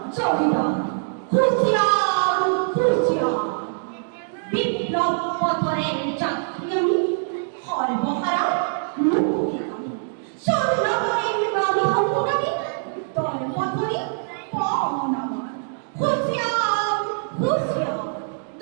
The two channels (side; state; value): left; silent; digital silence